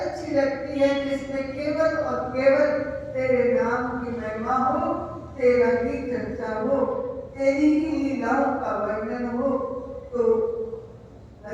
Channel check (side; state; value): both; identical; correlation 1.00